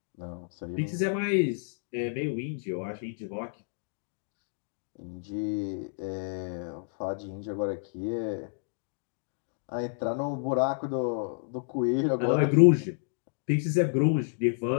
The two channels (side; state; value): right; silent; digital silence